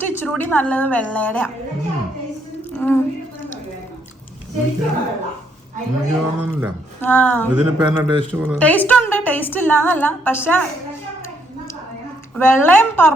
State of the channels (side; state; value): both; normal; correlation 0.71